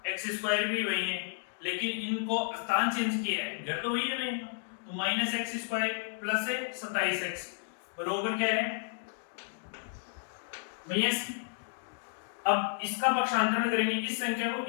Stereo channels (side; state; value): right; silent; digital silence